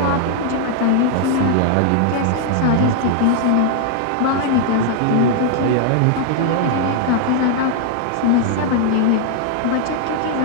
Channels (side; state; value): both; different; correlation 0.00